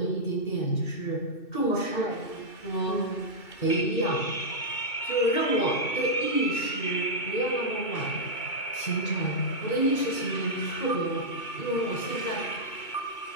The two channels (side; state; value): right; late; 2.6 ms